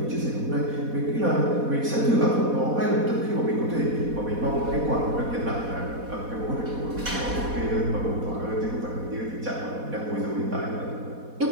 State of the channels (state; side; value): late; left; 4.1 ms